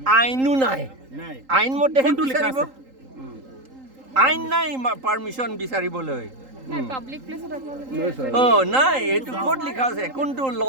আইনো নাই আইন মতেহে বিচাৰিব আইন নাই পাৰমিশ্যন বিচাৰিবলৈ পাব্লিক প্লেসত নাই এইটো ক'ত লিখা আছে কোনটো ল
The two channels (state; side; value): late; left; 3.8 ms